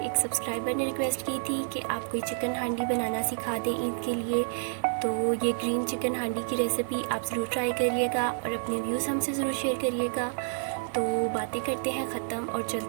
सब्सक्राइबर ने रिक्वेस्ट की थी कि आप कोई चिकन हांडी बनाना सिखा दें ईद के लिए। तो ये ग्रीन चिकन हांडी की रेसिपी आप ज़रूर ट्राई करिएगा और अपने व्यूज़ हमसे ज़रूर शेयर करिएगा। तो बातें करते हैं ख़त्म और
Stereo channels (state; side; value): silent; left; 58 dB below the other